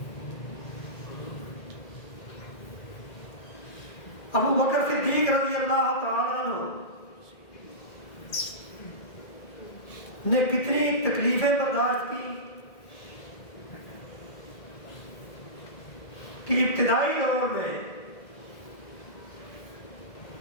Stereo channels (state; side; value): late; right; 1.8 ms